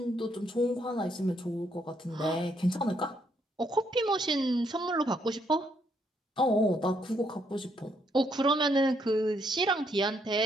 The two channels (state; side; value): normal; both; correlation 0.73